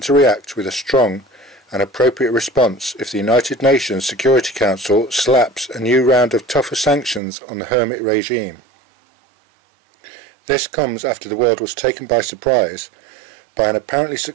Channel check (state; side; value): drops out; left; at 7.2 s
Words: to react with a strong and appropriate response if the United Nations Security Council slaps a new round of tougher sanctions on the hermit regime. This comes after the world was taken by surprise by an apparently